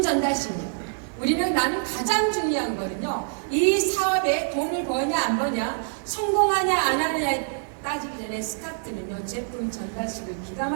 전달심이요. 나는 가장 중요한 거는요, 이 사업에 돈을 버냐 안 버냐, 성공하냐 안 하냐에 따지기 전에 스타트는요, 제품 전달식을 기가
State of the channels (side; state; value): left; silent; digital silence